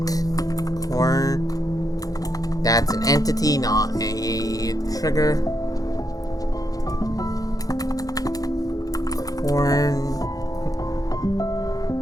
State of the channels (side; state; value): right; late; 0.17 ms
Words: That's an entity, not a trigger.